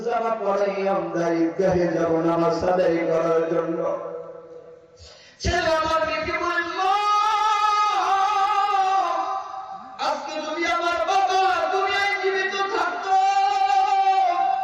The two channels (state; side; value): identical; both; correlation 1.00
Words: জামা পরাই আমরা ঈদগাহে যাব নামাজ আদায় করার জন্য। ছেলে আমার মেয়েকে বলল, আজকে যদি আমার বাবা দুনিয়ায় জীবিত থাকতো,